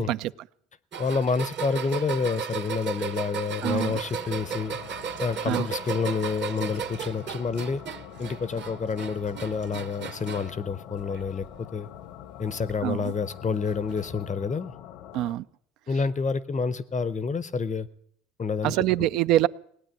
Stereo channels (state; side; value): normal; both; correlation 0.51